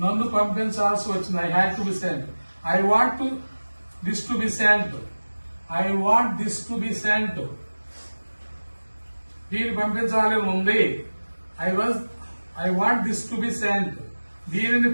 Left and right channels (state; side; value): inverted; both; correlation -1.00